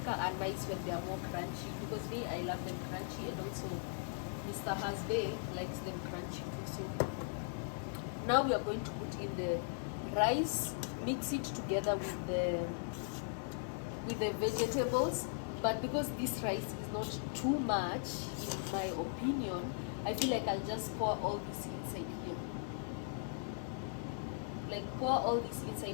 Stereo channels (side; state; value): right; silent; digital silence